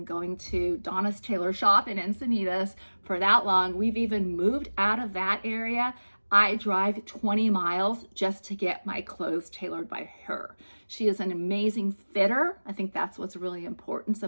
going to Donna's Tailor Shop in Encinitas for that long. We've even moved out of that area. I drive 20 miles just to get my clothes tailored by her. She is an amazing fitter. I think that's what's really important,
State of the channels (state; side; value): inverted; both; correlation -1.00